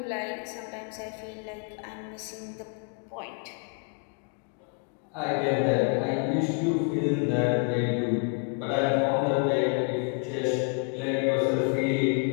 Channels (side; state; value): right; quieter; 38.7 dB